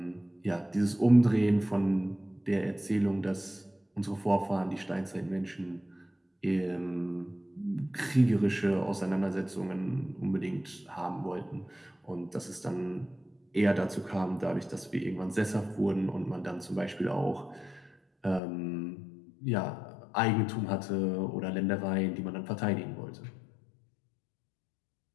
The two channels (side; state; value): right; drops out; at 18.4 s